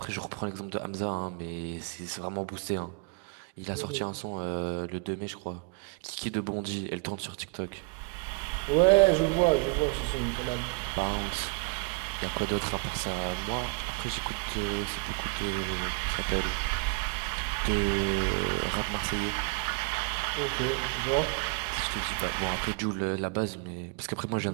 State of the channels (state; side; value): quieter; left; 31.8 dB